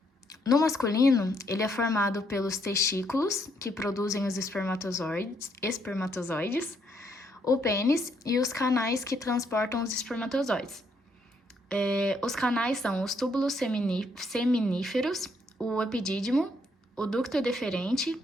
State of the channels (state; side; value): normal; both; correlation 0.72